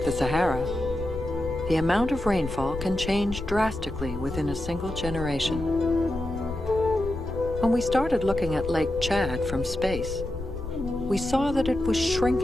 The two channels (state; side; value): noise; left; rumble, 9 dB below the sound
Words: the Sahara, the amount of rainfall can change drastically within a single generation. When we started looking at Lake Chad from space, we saw that it was